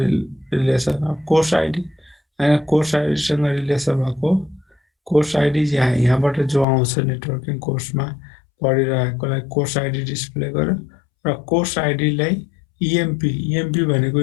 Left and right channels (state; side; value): drops out; right; at 6.7 s